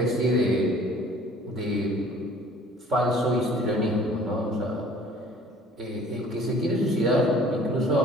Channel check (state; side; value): normal; both; correlation 0.52